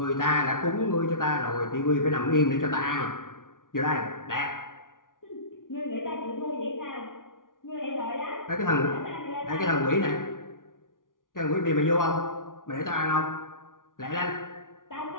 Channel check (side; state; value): right; late; 0.89 ms